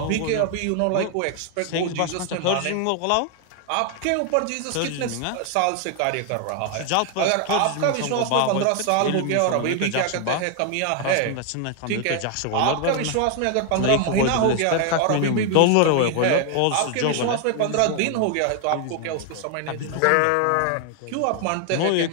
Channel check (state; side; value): different; both; correlation 0.01